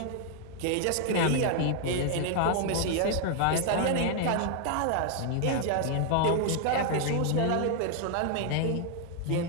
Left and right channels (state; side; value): different; both; correlation 0.00